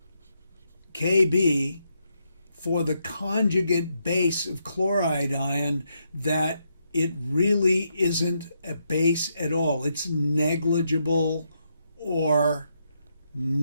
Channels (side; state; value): both; inverted; correlation -0.80